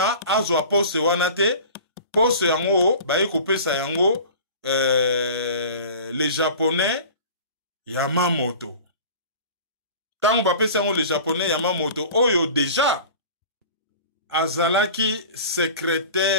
azwa poste wana te poste yango baye kopesa yango les japonais Yamamoto. Tango bapesa yango les japonais Yamamoto oyo déjà azalaki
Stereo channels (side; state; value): both; inverted; correlation -0.40